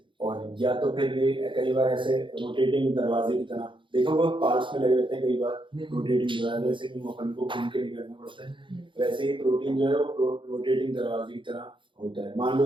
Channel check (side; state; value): left; late; 0.24 ms